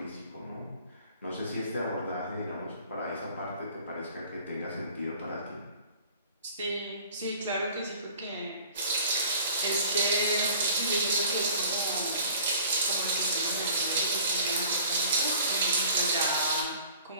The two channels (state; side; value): inverted; both; correlation -0.48